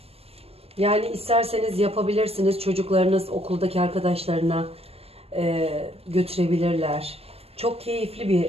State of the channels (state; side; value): late; left; 0.29 ms